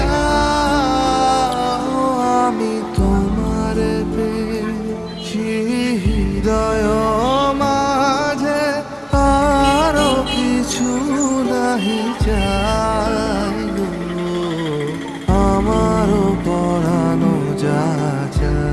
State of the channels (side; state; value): both; identical; correlation 1.00